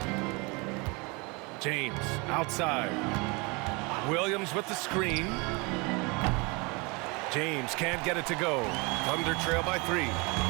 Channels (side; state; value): left; quieter; 28.0 dB